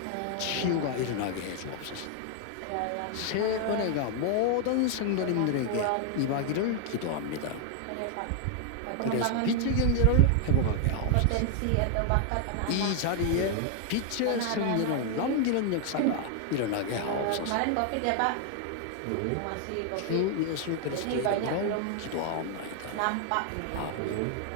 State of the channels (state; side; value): different; both; correlation 0.00